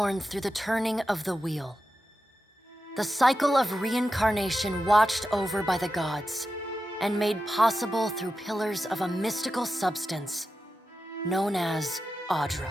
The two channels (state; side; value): normal; both; correlation 0.91